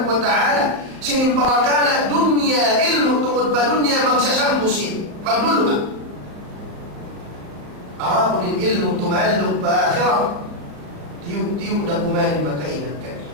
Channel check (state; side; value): late; left; 35 ms